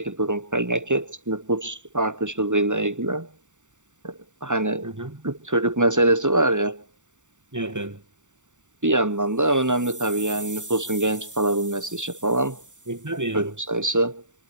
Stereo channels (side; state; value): left; late; 0.85 ms